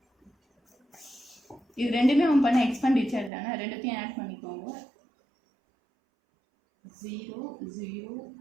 இது ரெண்டுமே அவன் பண்ண எக்ஸ்பெண்டிச்சர் தானே, ரெண்டுத்தையும் ஆட் பண்ணிக்கோங்க.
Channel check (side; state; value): left; drops out; at 3.3 s